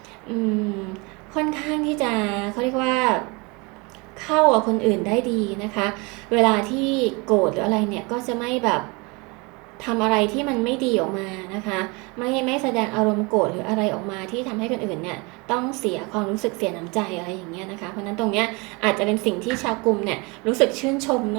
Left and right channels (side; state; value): left; quieter; 27.9 dB